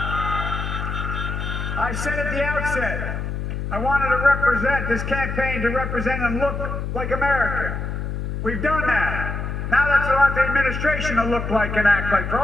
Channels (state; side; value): noise; left; hum, 4 dB below the sound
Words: I said at the outset, I wanted to represent this campaign to represent and look like America. We've done that. Now that's what I want the administration to look like and act like. For